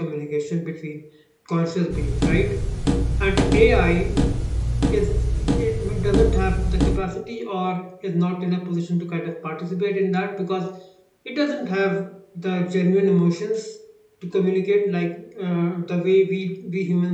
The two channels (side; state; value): both; identical; correlation 1.00